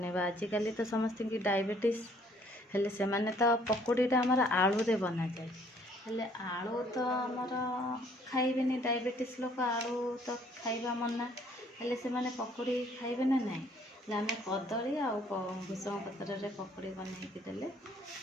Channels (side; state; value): both; normal; correlation 0.62